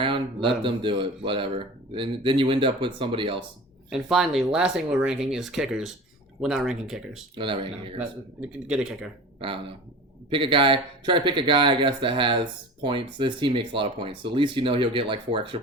let them do it. Whatever. And then you end up with somebody else. And finally, last thing we're ranking is kickers. We're not ranking kickers. We're not ranking kickers. Get a kicker. I don't know. Pick a guy. Try to pick a guy, I guess, that has points. This team makes a lot of points, so at least you know he'll get like 4 extra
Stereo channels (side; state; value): both; normal; correlation 0.35